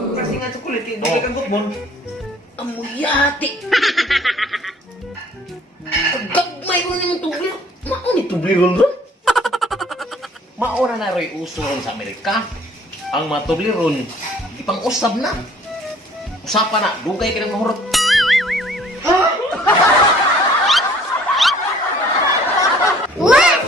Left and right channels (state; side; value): normal; both; correlation 0.55